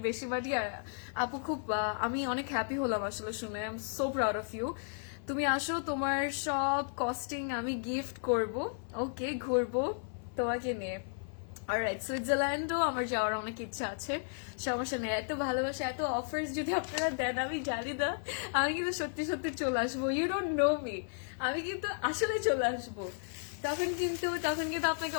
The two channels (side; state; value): right; silent; 55 dB below the other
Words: বেশি বাড়ি। আর আপু খুব আমি অনেক হ্যাপি হলাম আসলে শুনে। I am so proud of you. তুমি আসো, তোমার সব কস্টিং আমি গিফট করব। ওকে, ঘুরবো তোমাকে নিয়ে। অলরাইট, সুইজারল্যান্ডও আমার যাওয়ার অনেক ইচ্ছা আছে, সমস্যা নেই। এত ভালোবাসা, এত অফার্স যদি আপনারা দেন, আমি জানি না, আমি কিন্তু সত্যি সত্যি চলে আসবো। ইউ ডোন্ট নো মি, আমি কিন্তু আসলে চলে আসবো। তখন কিন্তু আপনাকে